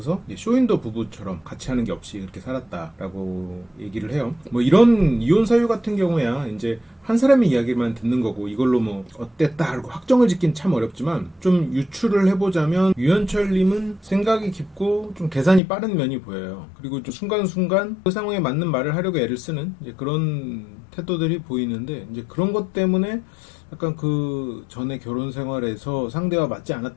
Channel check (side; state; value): right; drops out; at 15.6 s